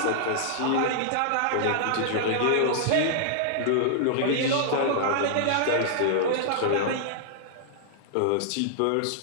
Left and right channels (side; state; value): both; different; correlation -0.01